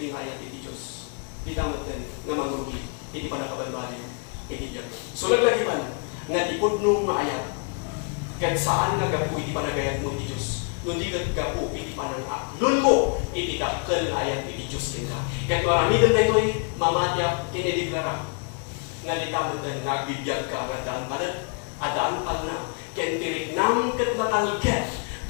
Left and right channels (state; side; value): quieter; right; 38.2 dB